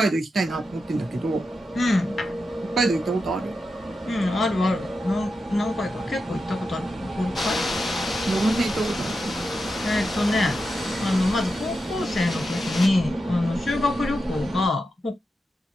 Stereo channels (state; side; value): normal; both; correlation 0.88